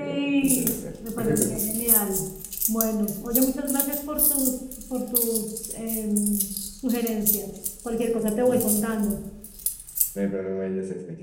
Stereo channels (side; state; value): both; identical; correlation 1.00